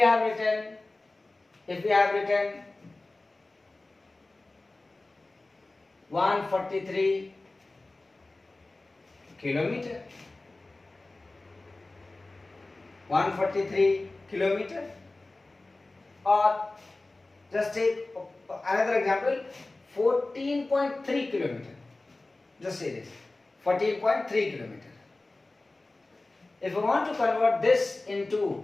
written 143 kilometer, 143 kilometer, or just take another example, 14.3 kilometer. Just say this, 14.3 kilometer. If we want to convert this into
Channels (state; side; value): quieter; right; 3.0 dB